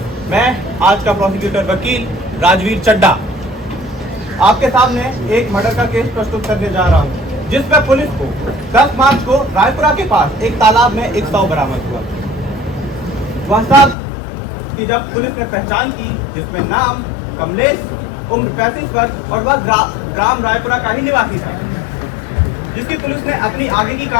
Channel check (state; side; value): drops out; right; at 14.0 s